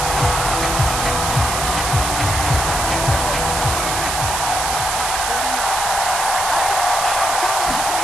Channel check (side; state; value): right; noise; hiss, 2 dB below the sound